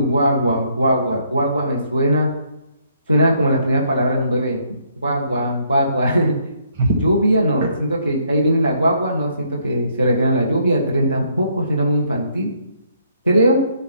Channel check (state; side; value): inverted; both; correlation -0.69